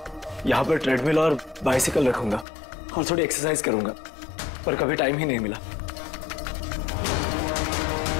यहाँ पर ट्रेडमिल और बाइसिकल रखूंगा और थोड़ी एक्सरसाइज करूंगा, पर कभी टाइम ही नहीं मिला।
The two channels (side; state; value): right; drops out; at 2.5 s